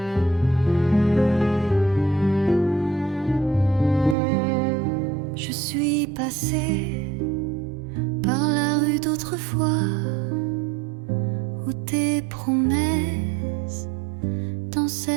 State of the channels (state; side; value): drops out; left; at 4.2 s